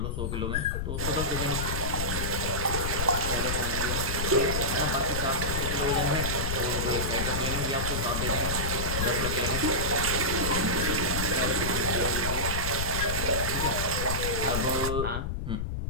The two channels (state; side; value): noise; left; rumble, 2 dB below the sound